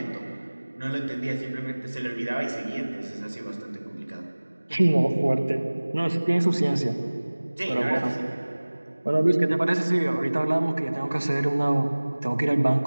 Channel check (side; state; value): both; inverted; correlation -1.00